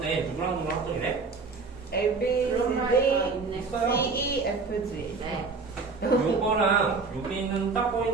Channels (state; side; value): quieter; left; 4.4 dB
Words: 누구랑 합동이래? A, B, 그런 C, 말이 D, 있네. C, E, F, G. 네. 요거랑 여기 있는 딱